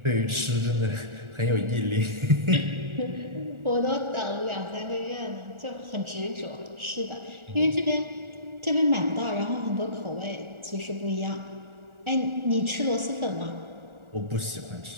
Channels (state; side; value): late; left; 1.4 ms